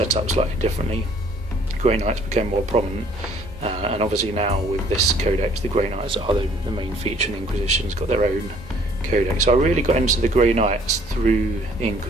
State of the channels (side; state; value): both; normal; correlation 0.59